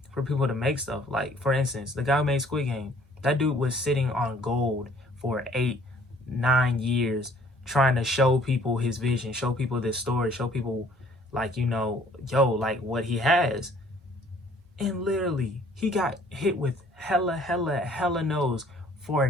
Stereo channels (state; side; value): normal; both; correlation 0.58